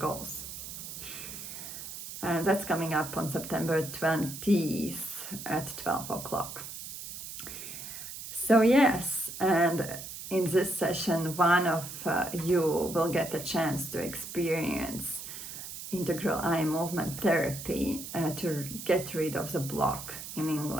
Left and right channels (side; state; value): right; noise; hiss, 10 dB below the sound